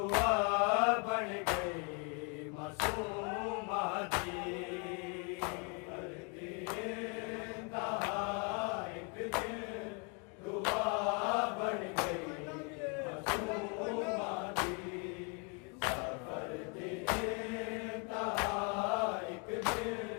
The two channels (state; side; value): quieter; right; 35.6 dB